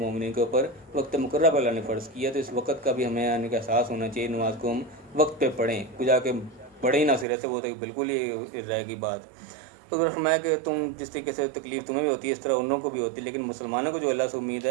کے اوپر وقت مقررہ پر اللہ نے فرض کیا, تو اس وقت کا بھی ہمیں آنے کا احساس ہونا چاہیے. نماز کو ہم وقت پہ پڑھیں, کچھ جا کے پڑھے ہی نہ سرے سے, وہ تو بالکل ہی رہے گی بات. تو اگر فرمایا کہ تم جس طریقے سے تکلیف تمہیں بھی ہوتی ہے اس طرح ان لوگوں کو بھی ہوتی ہے, لیکن مسلمانوں کو جو اللہ سے امید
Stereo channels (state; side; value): drops out; left; at 7.2 s